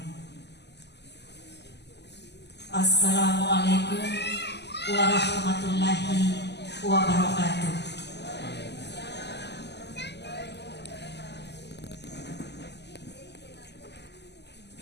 Assalamualaikum warahmatullahi wabarakatuh.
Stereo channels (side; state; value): right; late; 0.50 ms